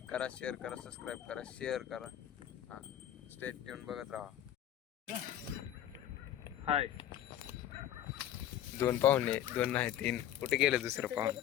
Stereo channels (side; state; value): right; quieter; 11.6 dB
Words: करा, शेअर करा, सबस्क्राईब करा, शेअर करा. हां, स्टेट ट्यून बघत राहा. हाय, दोन पाहुणे, दोन नाही तीन. कुठे गेलं दुसरं पाहुणे?